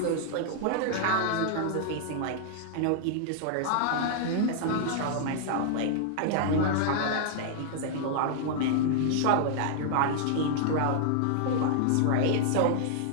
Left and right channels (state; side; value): different; both; correlation -0.01